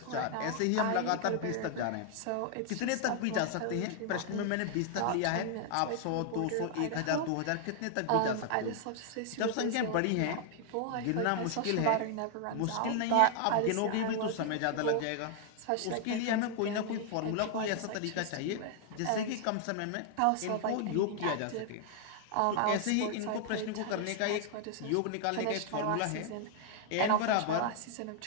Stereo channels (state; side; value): different; both; correlation 0.00